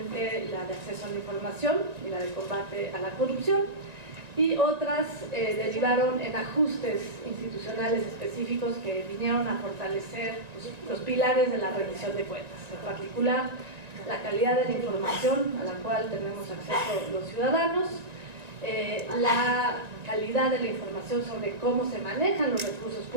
la de acceso a la información y la de combate a la corrupción, y otras derivaron en ajustes institucionales específicos que vinieron a fortalecer los pilares de la rendición de cuentas, en particular la calidad de la información a la cual tenemos acceso los ciudadanos, la calidad de la información sobre cómo se manejan los recursos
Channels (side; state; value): left; late; 1.9 ms